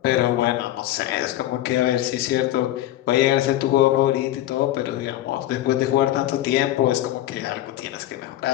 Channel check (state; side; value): quieter; right; 14.1 dB